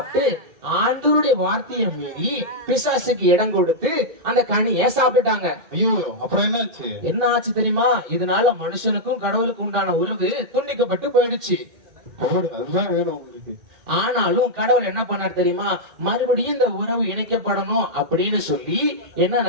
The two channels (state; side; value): late; left; 2.1 ms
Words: ஆண்டவருடைய வார்த்தையை மீறி பிசாசுக்கு இடம் கொடுத்து அந்த கனியை சாப்பிட்டுட்டாங்க. ஐயோ, அப்புறம் என்னாச்சு? என்ன ஆச்சு தெரியுமா? இதனால மனுஷனுக்கும் கடவுளுக்கு உண்டான உறவு துண்டிக்கப்பட்டு போயிடுச்சு. அதுதான் வேணும் உங்களுக்கு. ஆனாலும் கடவுள் என்ன பண்ணார் தெரியுமா? மறுபடியும் இந்த உறவு இணைக்கப்படணும் அப்படின்னு சொல்லி என்ன